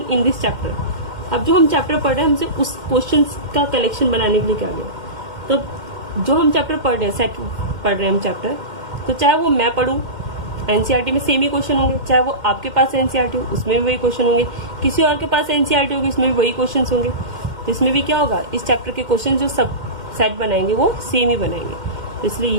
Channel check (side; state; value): left; late; 2.1 ms